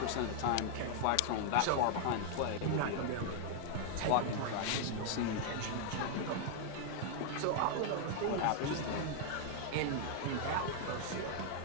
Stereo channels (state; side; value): different; both; correlation 0.00